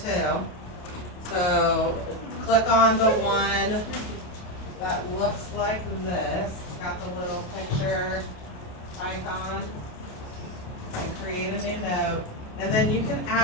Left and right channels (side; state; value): right; late; 28 ms